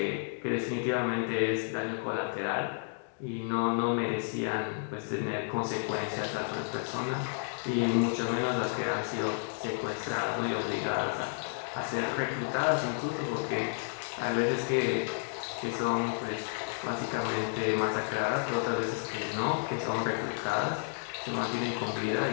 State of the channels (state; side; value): silent; right; digital silence